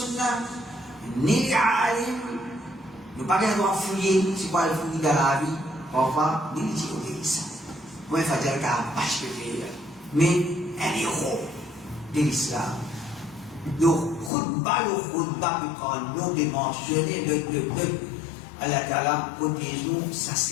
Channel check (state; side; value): drops out; right; at 14.3 s